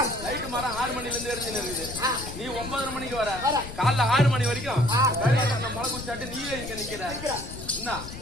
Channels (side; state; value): left; noise; rumble, 11 dB below the sound